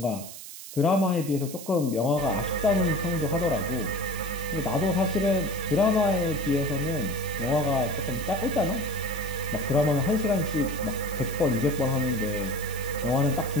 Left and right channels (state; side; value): noise; right; hiss, 13 dB below the sound